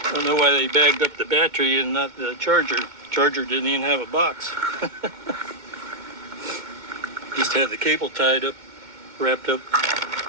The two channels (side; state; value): left; late; 2.2 ms